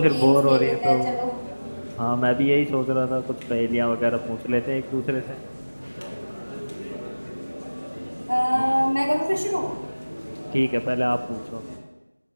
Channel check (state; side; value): inverted; both; correlation -1.00